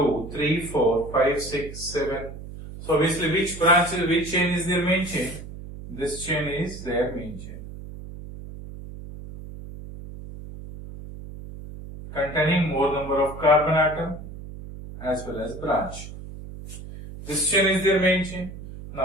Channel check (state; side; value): noise; right; hum, 12 dB below the sound